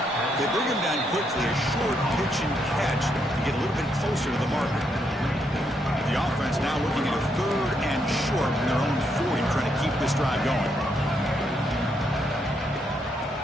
They bring him down quickly, a short pitch and catch to get a little bit closer to the marker. The offense now looking at a third and short from their own 40, trying to keep this drive going.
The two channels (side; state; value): both; normal; correlation 0.77